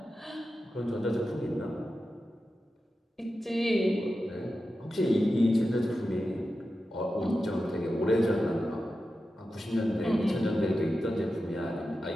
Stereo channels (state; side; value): normal; both; correlation 0.91